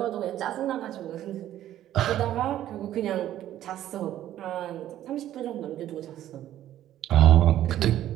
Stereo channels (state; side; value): quieter; left; 12.5 dB